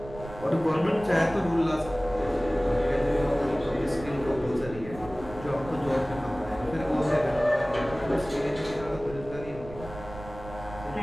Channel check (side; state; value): right; noise; rumble, 15 dB below the sound